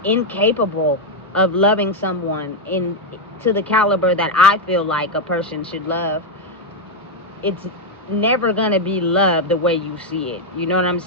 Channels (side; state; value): both; normal; correlation 0.02